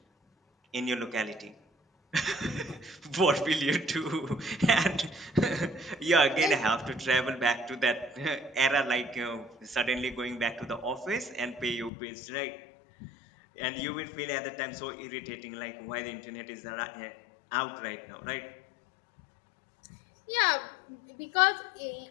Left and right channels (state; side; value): drops out; right; at 11.9 s